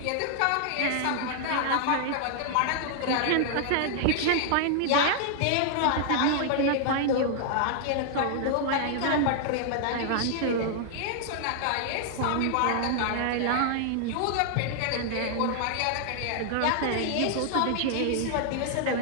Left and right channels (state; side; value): different; both; correlation 0.00